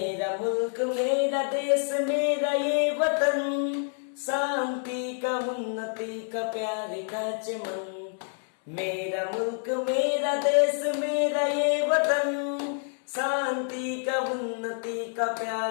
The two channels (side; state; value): right; silent; 59 dB below the other